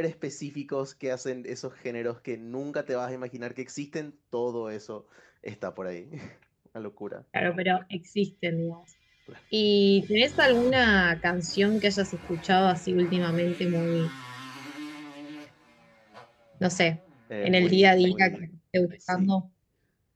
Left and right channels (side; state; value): both; identical; correlation 1.00